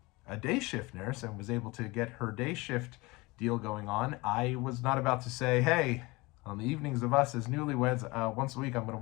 a day shift nurse and was able to get her day shift deal going on, I was not about to say, hey, on the evenings of us as newlyweds, once a week I'm going to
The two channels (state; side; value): quieter; right; 23.4 dB